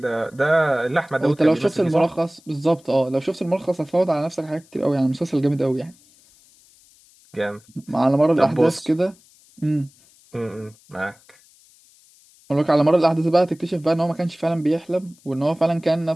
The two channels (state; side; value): noise; left; hiss, 29 dB below the sound